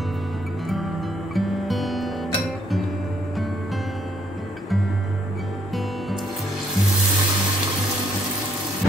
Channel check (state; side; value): normal; both; correlation 0.70